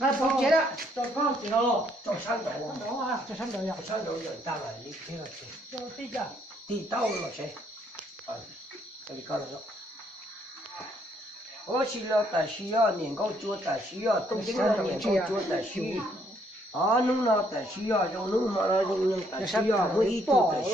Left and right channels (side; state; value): both; normal; correlation 0.69